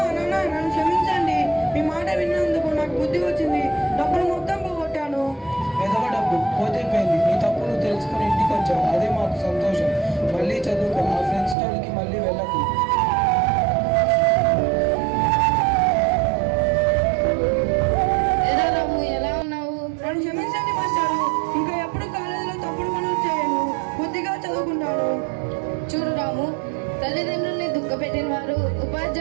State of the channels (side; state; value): left; drops out; at 11.6 s